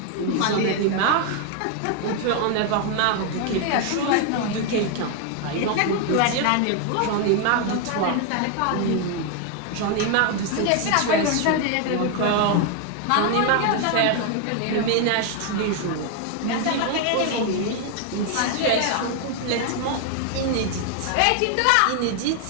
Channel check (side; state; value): both; different; correlation 0.00